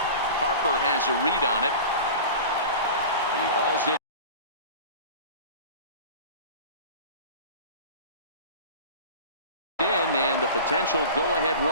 Harper has a read on it. He hauls it in, and the potential go-ahead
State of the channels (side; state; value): both; inverted; correlation -0.36